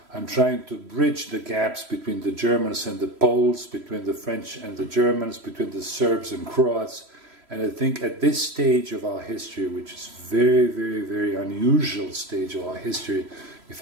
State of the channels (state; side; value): late; left; 3.1 ms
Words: I'm trying to bridge the gaps between the Germans and the Poles, between the French and the Germans, between the Serbs and Croats. And I think at this stage of our history, which is very, very, very unusual stage of our history, if